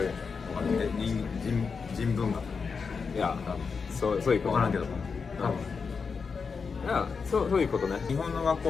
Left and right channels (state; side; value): quieter; right; 5.3 dB